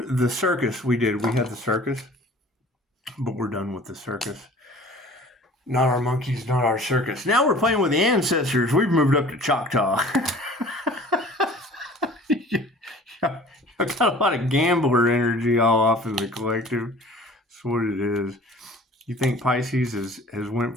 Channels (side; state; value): both; normal; correlation 0.47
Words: the circus. We had the circus, but we're done with the circus. Not our monkeys, not our circus. Now we're playing with the ancestors. We've moved up to Choctaw. I've got a lot of gambler energy all off in the collective. That's what it is. You think Pisces has went